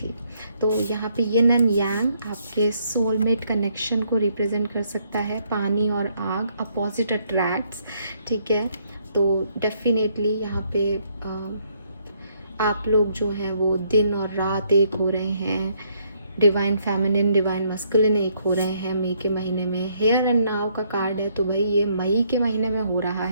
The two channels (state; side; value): inverted; both; correlation -0.70